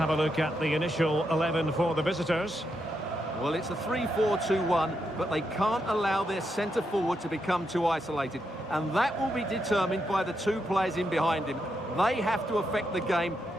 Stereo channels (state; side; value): normal; both; correlation 0.82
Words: a look at the initial 11 for the visitors. Well, it's a 3-4-2-1, but they can't allow their centre forward to become too isolated. And that will be determined by the two players in behind him. They have to affect the game